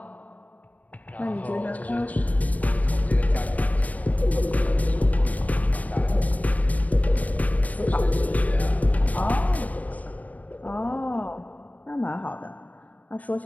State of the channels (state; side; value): late; right; 0.071 ms